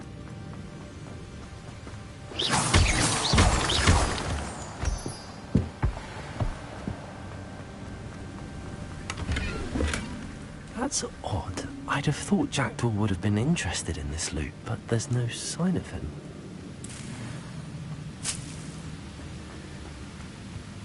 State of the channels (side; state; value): both; identical; correlation 1.00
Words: That's odd. I'd have thought Jackdaw would have been interested in this loot, but there's no sign of him.